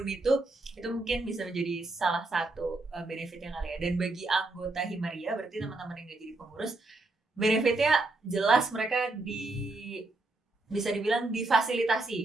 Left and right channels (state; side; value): quieter; left; 3.1 dB